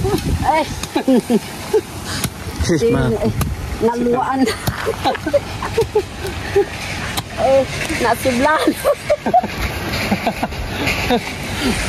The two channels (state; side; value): identical; both; correlation 1.00